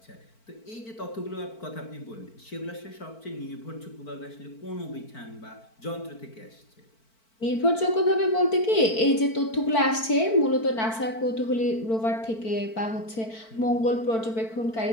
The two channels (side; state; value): right; late; 4.5 ms